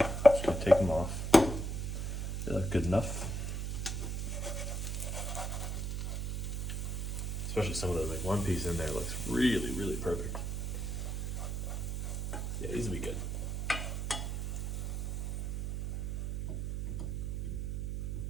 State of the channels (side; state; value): right; noise; hum, 2 dB below the sound